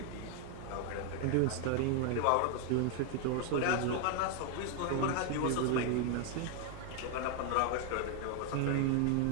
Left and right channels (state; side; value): different; both; correlation 0.00